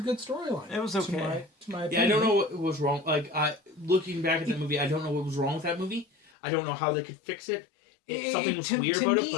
good storyline. It was okay. To my opinion. Yeah, I don't know what was wrong. Like, looking back at the movie, I don't know what was wrong with that movie. I don't know how they could fix it. Something was weird about it.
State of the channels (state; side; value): drops out; right; at 6.3 s